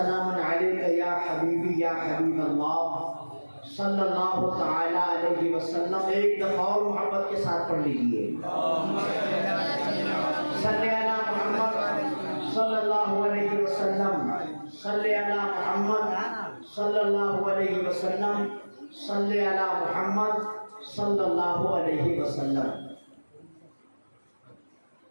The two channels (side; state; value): both; inverted; correlation -1.00